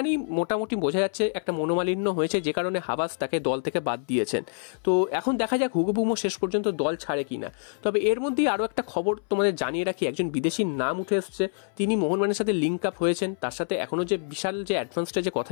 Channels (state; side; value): silent; right; 61 dB below the other